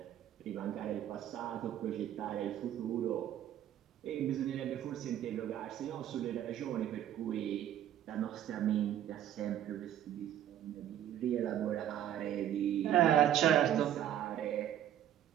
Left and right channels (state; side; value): quieter; left; 11.2 dB